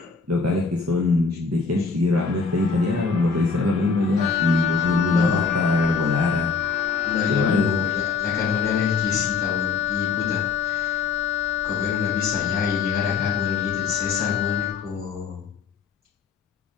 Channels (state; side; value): quieter; right; 5.0 dB